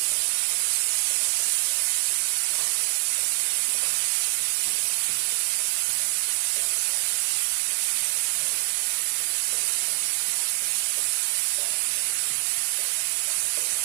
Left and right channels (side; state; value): left; silent; digital silence